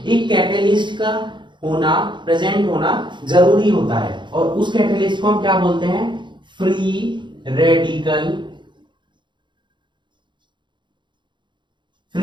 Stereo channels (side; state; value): left; late; 0.23 ms